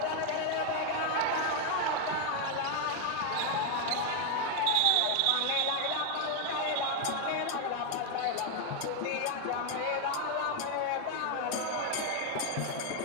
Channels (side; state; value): both; different; correlation 0.01